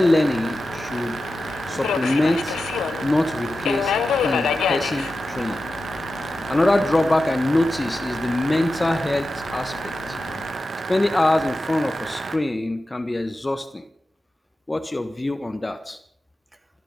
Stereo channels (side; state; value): both; normal; correlation 0.92